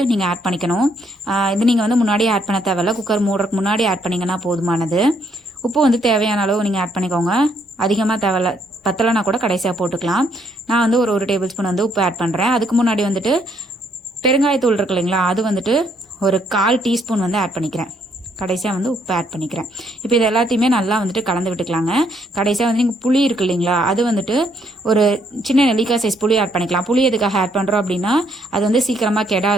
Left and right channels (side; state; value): both; normal; correlation 0.70